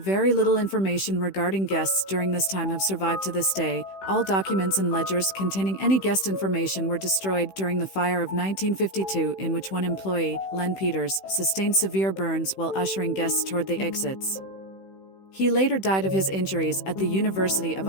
little information regarding guests during this time have survived to this day. All documents and ledgers containing any guest information were destroyed during the fire of 1952, in which one employee, Len Peters, sustained severe burns while ushering guests toward the exits. He later died of his injuries at the University of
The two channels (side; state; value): right; late; 16 ms